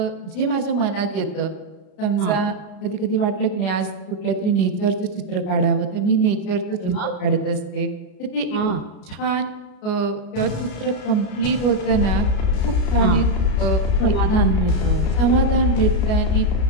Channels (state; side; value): late; right; 33 ms